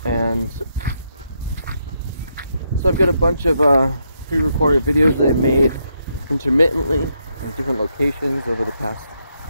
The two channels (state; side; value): inverted; both; correlation -0.79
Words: And so I've got a bunch of pre-recorded videos that I made intermittently in different locations over the past